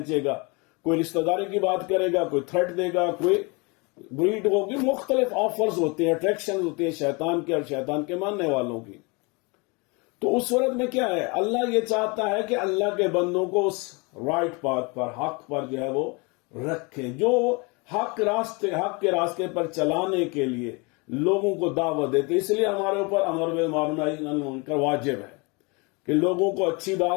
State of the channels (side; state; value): right; quieter; 29.2 dB